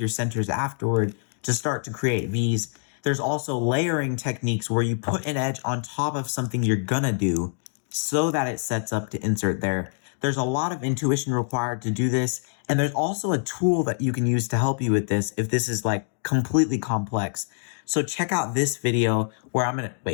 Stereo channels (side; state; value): right; silent; 62 dB below the other